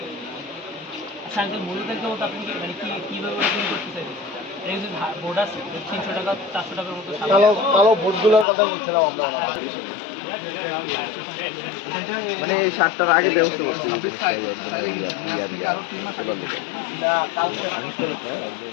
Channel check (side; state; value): right; drops out; at 8.5 s